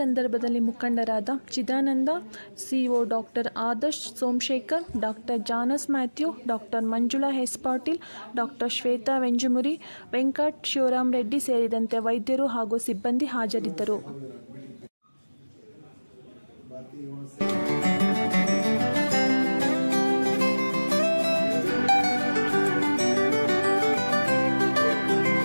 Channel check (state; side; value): inverted; both; correlation -1.00